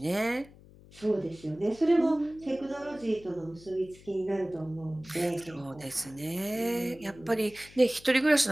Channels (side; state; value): left; noise; hum, 22 dB below the sound